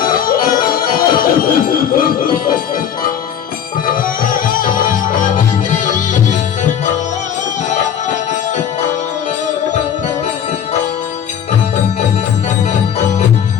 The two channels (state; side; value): quieter; right; 8.8 dB